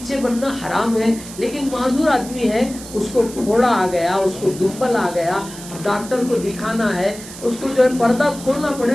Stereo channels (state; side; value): noise; right; hiss, 14 dB below the sound